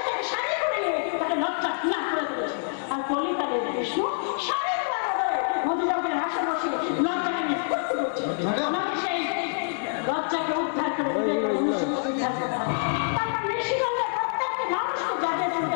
তাকে শাড়ি করে নিয়ে তাকে লজ্জা না করে দিয়েছে। আর কলিকালের কৃষ্ণ শাড়ির বদলে মধুজগের হাসে বসে লজ্জাকে নিয়ে ফুর্তি করছে। আমাকে সেই লজ্জাকে উদ্ধার করে দিতে গেলে মনুষ্যকে উদ্ধার করতে হবে। তারপর নিশিগঞ্জের প্রত্যেকটি মানুষকে জাগিয়ে তুলতে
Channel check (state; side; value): silent; right; digital silence